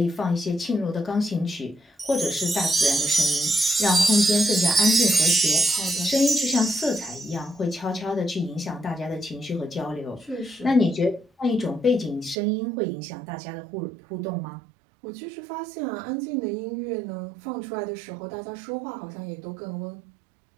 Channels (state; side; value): drops out; left; at 12.4 s